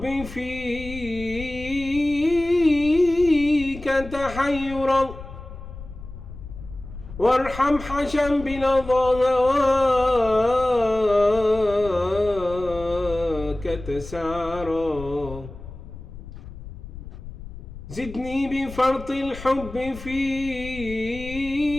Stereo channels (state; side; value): noise; left; rumble, 13 dB below the sound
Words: فيك تحيرا، وارحم حشا بلظى هواك تسعرا. زدني بفرط الحب فيك